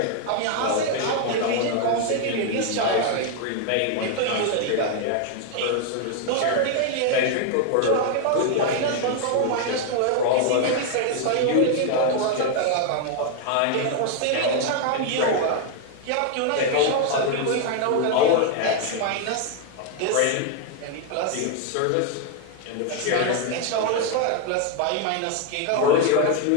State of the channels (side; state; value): both; different; correlation 0.00